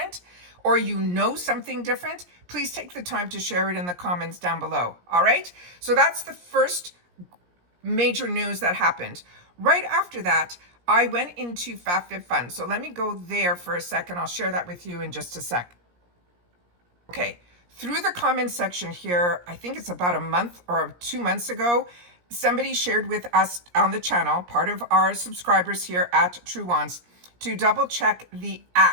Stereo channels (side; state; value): left; late; 17 ms